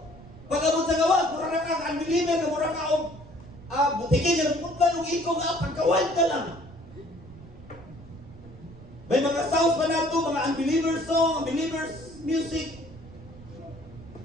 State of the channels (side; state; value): right; noise; rumble, 19 dB below the sound